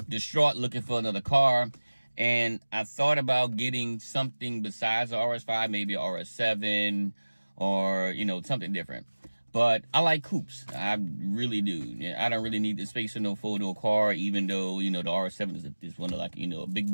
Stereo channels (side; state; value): both; inverted; correlation -1.00